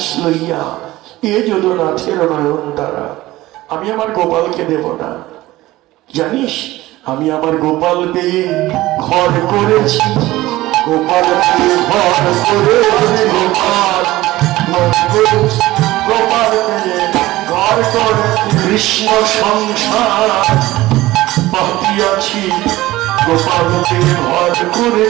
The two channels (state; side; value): quieter; left; 17.5 dB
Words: লইয়া এ যদুনাথের নয়ন তারা। আমি আমার গোপালকে দেব না, জানিস? আমি আমার গোপাল পেয়ে ঘর করেছি, গোপাল পেয়ে ঘর করেছি, গোপাল গোপাল পেয়ে ঘর কৃষ্ণ সংসার পাতিয়াছি, গোপালকে ঘর